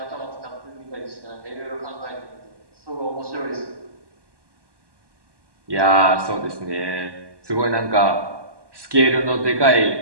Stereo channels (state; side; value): late; left; 1.1 ms